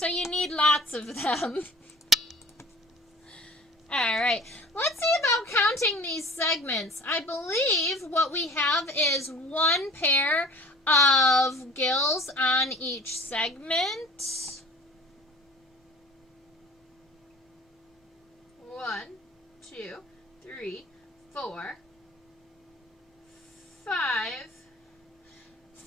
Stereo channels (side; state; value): both; normal; correlation 0.44